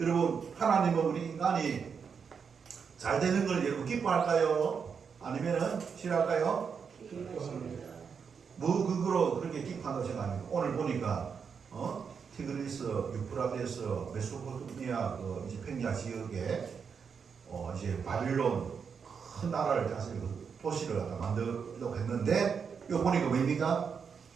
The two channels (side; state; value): left; quieter; 6.3 dB